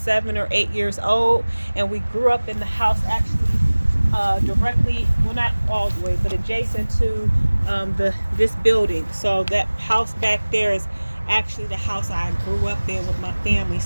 or 8 years old. And we grew up in the house actually directly, well, not all the way, but adjacent to this building. So that house back there is actually the house I grew up in with my family.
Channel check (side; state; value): both; inverted; correlation -1.00